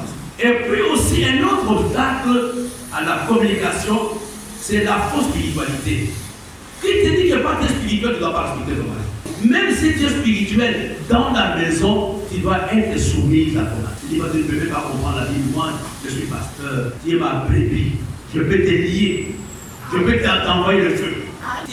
Et puis aussi, un autre obstacle à la communication, c'est la fausse spiritualité. Qui te dit que pas que spirituel, tu ne dois pas respecter ton mari. Même si tu es spirituel, dans la maison, tu dois être soumis à ton mari. Tu dis, tu ne peux pas comprendre la vie. Moi, je suis pasteur. Tu es ma brebis. Je peux te lier. Je peux t'envoyer le feu.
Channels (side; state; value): both; identical; correlation 1.00